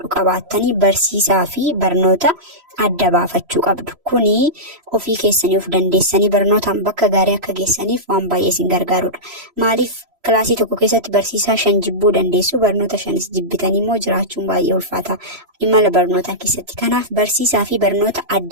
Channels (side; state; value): left; late; 3.0 ms